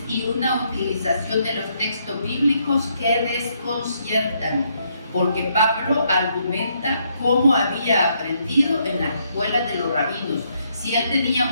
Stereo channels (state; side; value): inverted; both; correlation -0.74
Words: y una utilización de los textos bíblicos que desconciertan, porque Pablo argumenta cómo había aprendido en las escuelas de los rabinos. Si él tenía